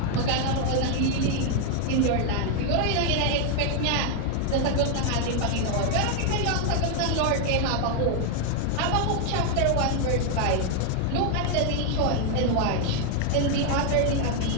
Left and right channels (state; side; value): different; both; correlation 0.00